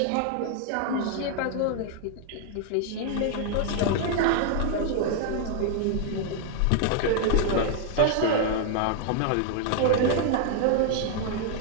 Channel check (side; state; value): both; different; correlation 0.00